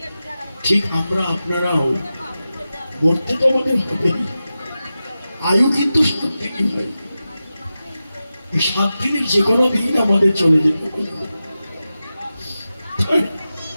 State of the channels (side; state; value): both; inverted; correlation -0.93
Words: ঠিক আমরা আপনারাও মরতে তো আমাদের হবে না, আয়ু কিন্তু 7 দিনই হয়। এই 7 দিনের যে কোনো দিন আমাদের চলে যেতে হবে,